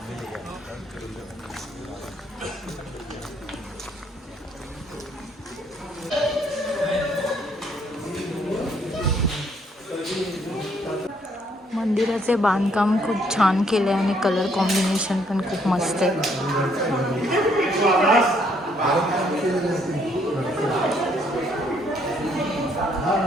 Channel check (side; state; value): both; normal; correlation 0.68